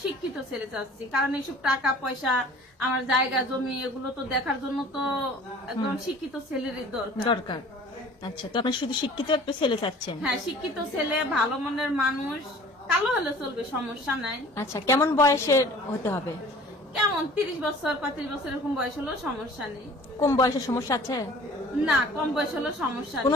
শিক্ষিত ছেলে চাচ্ছি। কারণ এইসব টাকা পয়সা, আমার জায়গা জমি, এগুলো তো দেখার জন্য তো একদম শিক্ষিত ছেলেরই দরকার। আচ্ছা, তো আপনি শুধু শিক্ষিত একটা ছেলে চাচ্ছেন? হ্যাঁ, শিক্ষিত ছেলে, ভালো মনের মানুষ, কালো হলে চলবে, সমস্যা নাই। আচ্ছা, কেমন বয়সের হতে হবে? কেমন 30 বছর 35 বছর এরকম বয়স হলো সমস্যা নেই। কম বয়সের সমস্যা আছে? না, কম বয়স হলো সমস্যা,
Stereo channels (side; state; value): both; normal; correlation 0.48